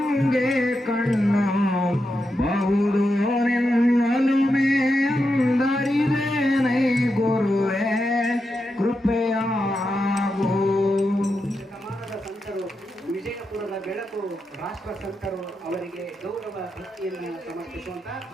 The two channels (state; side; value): normal; both; correlation 0.87